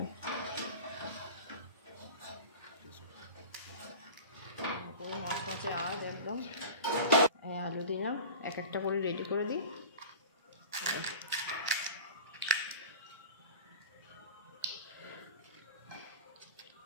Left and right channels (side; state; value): both; inverted; correlation -0.36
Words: মাছ মাছে আজ একদম আলু দিলাম, এক একটা করে রেডি করে দিই।